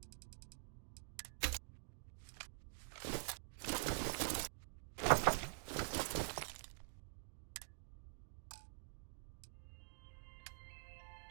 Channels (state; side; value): silent; left; digital silence